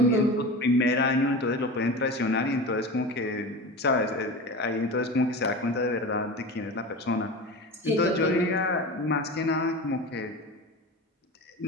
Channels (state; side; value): normal; both; correlation 0.29